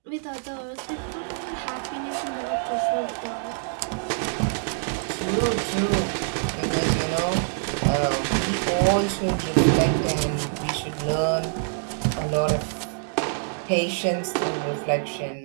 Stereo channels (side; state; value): left; silent; digital silence